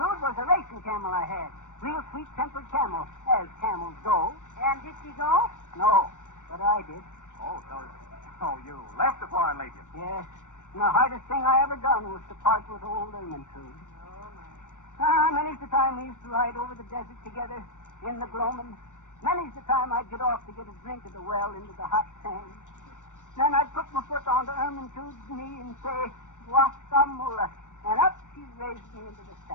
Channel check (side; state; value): right; late; 0.86 ms